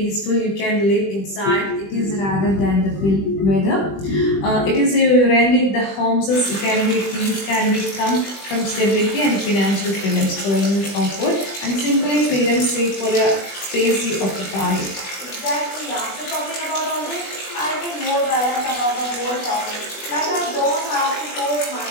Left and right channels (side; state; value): right; late; 20 ms